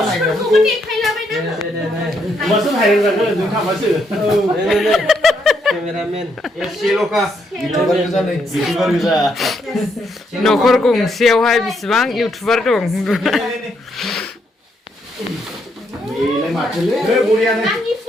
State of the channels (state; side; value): normal; both; correlation 0.75